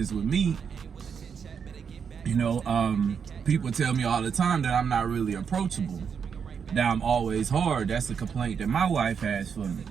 with me, you know, people tell me all the time that I'm not really approachable, that I'm always hard. That's a complaint that my wife has for me,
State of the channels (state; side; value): quieter; left; 6.7 dB